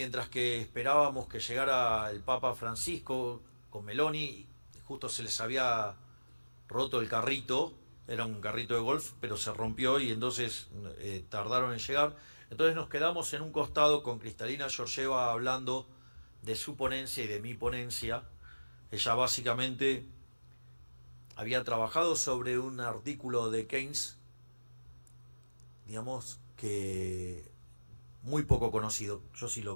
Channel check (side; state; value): both; inverted; correlation -1.00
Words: que esperábamos que llegara el Papa Francisco con Meloni, justo se les había roto el carrito, era un carrito de golf, pero se rompió y entonces tardaron en llegar. Entonces nos quedamos en un costado con Kristalina Georgieva hablando de su ponencia y de mi ponencia. Ella básicamente había trabajado sobre un artículo de Keynes, digamos, que muy poco conocido. Yo sí